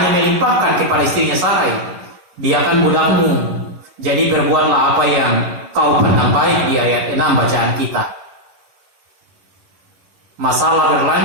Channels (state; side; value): late; left; 11 ms